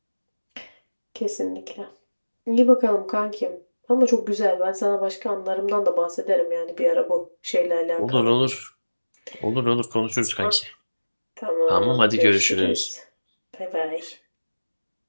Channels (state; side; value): inverted; both; correlation -1.00